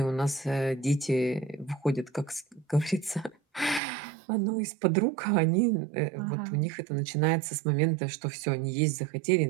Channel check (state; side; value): drops out; left; at 3.8 s